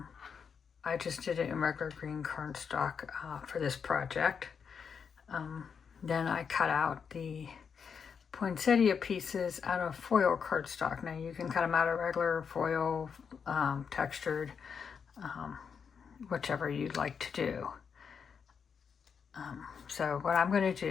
I just did it in regular green cardstock for this project. Then I cut out the poinsettia pieces out of foil cardstock. Now you can cut them out of regular foil, textured, whichever you'd like to do. So what I'm going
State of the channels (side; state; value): right; quieter; 6.5 dB